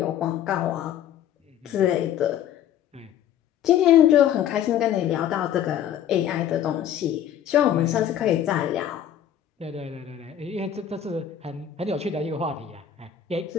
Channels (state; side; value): quieter; right; 10.0 dB